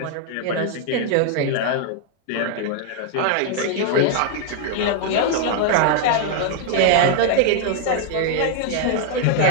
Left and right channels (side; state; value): both; different; correlation 0.00